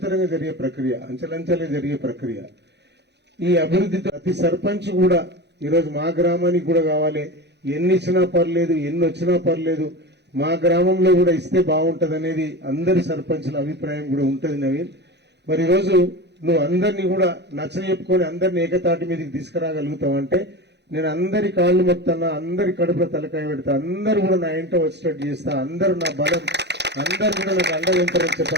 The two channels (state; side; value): late; left; 0.50 ms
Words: జరిగే ప్రక్రియ, అంచెలంచెలుగా జరిగే ప్రక్రియ. ఈ అభివృద్ధితో ప్రతి సర్పంచ్ కూడా ఈరోజు మా గ్రామానికి కూడా కావాలి, ఎన్ని ఇచ్చినా పర్లేదు, ఎన్ని వచ్చినా పర్లేదు, మా గ్రామంలో కూడా ఇస్తే బాగుంటది అనేది అందరి సర్పంచుల అభిప్రాయం కూడా ఉంటది నవీన్. మరి ఈరోజు నువ్వు అందరినీ కూడా నచ్చజెప్పుకొని అందరినీ ఏకతాటి మీదకి తీసుకురాగలుగుతావంటే నేను అందరి కాళ్ళు మొత్తాన, అందరి కడుపులో తలకాయ పెడతా, అందరూ కూడా నా ఇంట వచ్చేటట్టు చేస్తా, అందరూ నా బలం, అందరు కూడా నాకు అండగా ఉంటారని